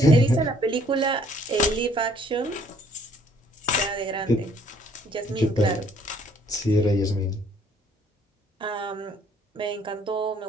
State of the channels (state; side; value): normal; both; correlation 0.61